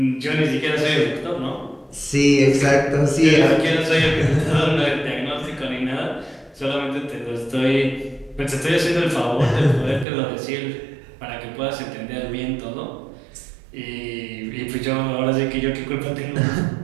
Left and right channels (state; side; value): drops out; left; at 10.1 s